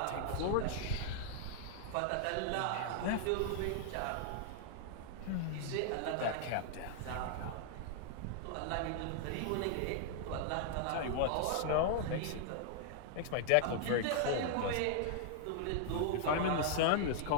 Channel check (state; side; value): different; both; correlation 0.00